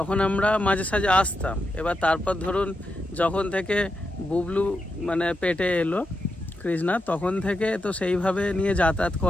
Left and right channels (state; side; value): normal; both; correlation 0.86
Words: আমরা মাঝে সাঝে আসতাম। এবার তারপর ধরুন যখন থেকে বুবলু মানে পেটে এলো কৃষ্ণা, তখন থেকে তো সেইভাবে নিয়ে যাতায়াত